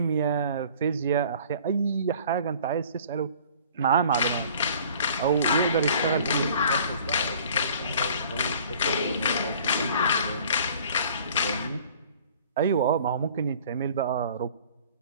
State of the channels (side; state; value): both; inverted; correlation -0.50